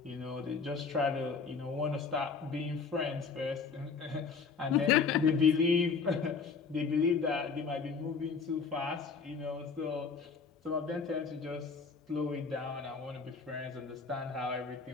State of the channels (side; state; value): right; quieter; 5.2 dB